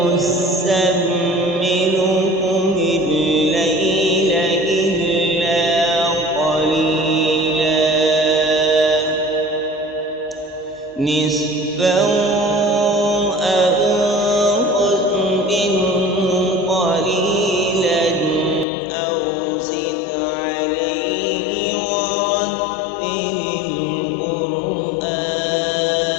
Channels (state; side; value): drops out; right; at 18.7 s